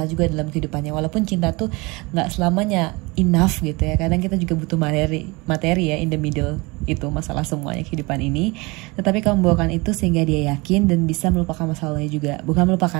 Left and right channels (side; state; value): left; quieter; 25.3 dB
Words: juga dalam kehidupannya. Walaupun cinta tuh nggak selamanya enough gitu ya. Kadang kita juga butuh materi ya, in the middle itu masalah semuanya kehidupan ini. Tetapi kamu membawakan itu sehingga dia yakin dan bisa melupakan masalahnya juga. Bukan